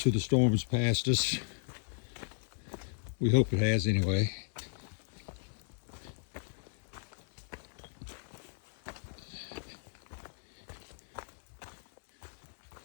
of the storm's passed us. We hope it has anyway.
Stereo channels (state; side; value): silent; right; digital silence